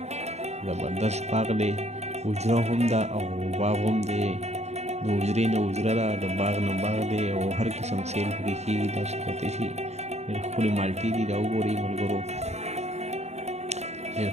زبردست باغ دی حجره هم ده او باغ هم دی د حجرې نه حجره ده د باغ نه باغ دی او هر قسم سیل پکې کېږي تاسو کتلی شئ ډېر ښکلې مالټې دي دا وګورئ ملګرو ډېر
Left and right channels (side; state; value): left; late; 0.32 ms